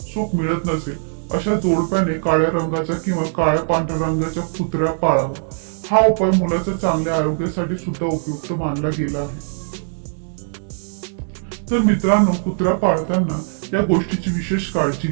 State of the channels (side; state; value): left; silent; digital silence